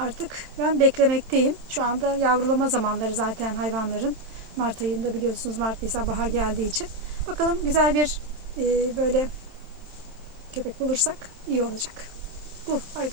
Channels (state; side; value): late; left; 27 ms